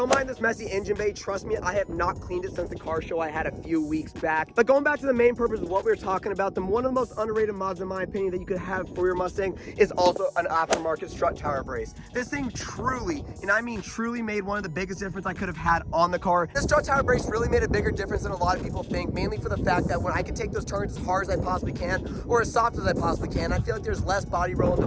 mind this messy engine bay. Trust me, I have not cleaned it since the car show I had a few weeks back. But going back to the main purpose of what we were talking about, one of the most underrated mods in my opinion that you could have for your Mustang is also an aftermarket strut tower brace. This thing truly, and I mean truly, made one of the biggest difference I could have had on the car. This strut tower brace really made a bigger difference than a lot of people think, mainly for the fact that when I can take those turns as hard as I possibly can or as soft as I possibly can, I feel like there's less body roll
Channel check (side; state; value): both; identical; correlation 1.00